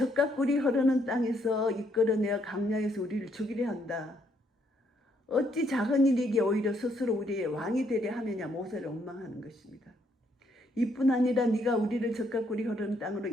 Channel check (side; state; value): both; normal; correlation 0.71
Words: 꿀이 흐르는 땅에서 이끌어내어 강야에서 우리를 죽이려 한다. 어찌 작은 일이기에 오히려 스스로 우리의 왕이 되려 하느냐. 모세를 원망하는 것입니다. 이뿐 아니라 네가 우리를 젖과 꿀이 흐르는 땅으로